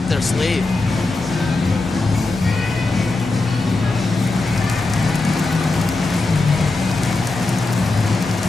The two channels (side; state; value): right; quieter; 3.3 dB